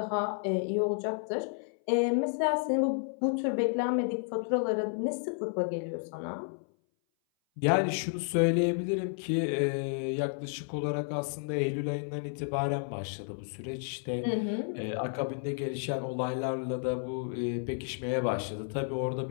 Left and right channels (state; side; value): silent; right; 57 dB below the other